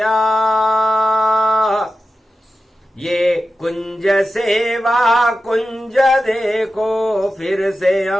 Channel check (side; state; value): both; normal; correlation 0.93